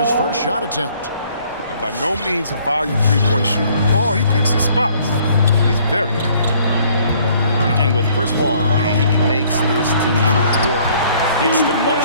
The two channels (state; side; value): inverted; both; correlation -0.60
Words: first shot attempt. And by no means a volume three-point shooter. Paul, he picks his spots. He's very accurate. And with Chris Paul, he makes this team work. Gets the